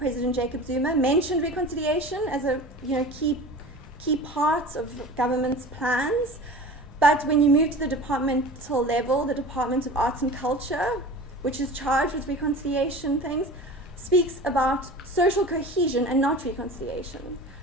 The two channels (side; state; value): both; normal; correlation 0.37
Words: Jacob Zuma mentioned reconciliation as a key part of government's plans. But when you move to the departmental level, the Department of Arts and Culture, which is charged with reconciliation things, speaks about social cohesion and not reconciliation.